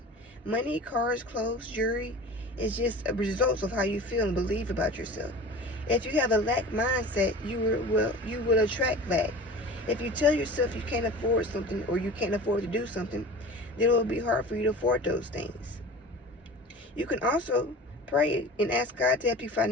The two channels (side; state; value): both; normal; correlation 0.37